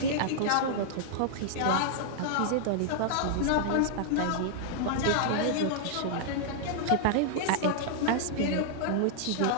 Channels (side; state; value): both; different; correlation -0.01